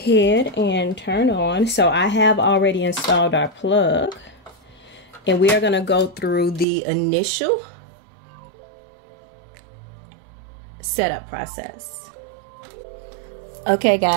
and turn on. So I have already installed our plug, and we are going to go through the initial setup process. Okay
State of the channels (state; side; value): drops out; left; at 6.7 s